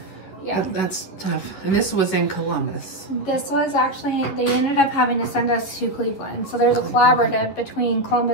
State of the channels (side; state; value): right; late; 11 ms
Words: Yeah. That's tough. And this was in Columbus. This was actually, they ended up having to send us to Cleveland. So there's a collaborative between